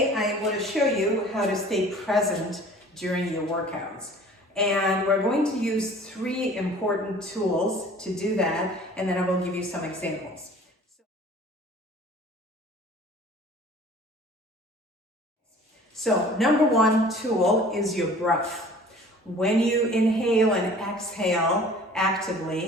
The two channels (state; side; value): normal; both; correlation 0.47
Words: I want to show you how to stay present during your workouts. And we're going to use 3 important tools to do that, and then I will give you some examples. So number 1 tool is your breath. When you inhale and exhale